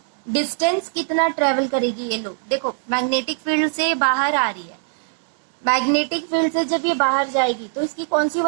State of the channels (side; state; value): left; silent; 65 dB below the other